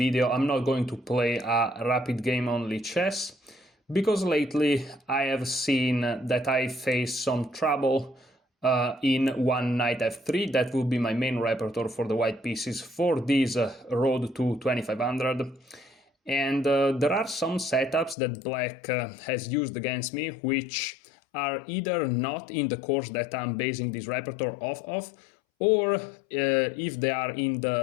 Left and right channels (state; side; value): drops out; right; at 18.2 s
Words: I'm not going to play a rapid game only chess because lately I have seen that I face some trouble in one knight f3. That will be my main repertoire for the white pieces for this road to 2500. And there are some setups that black has used against me which are either not in the course that I'm basing this repertoire off of, or if they are in